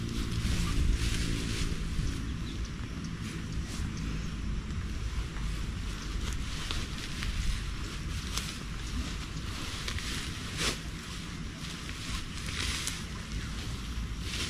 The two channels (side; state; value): both; identical; correlation 1.00